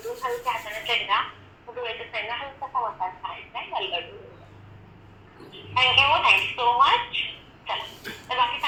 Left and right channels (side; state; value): both; identical; correlation 1.00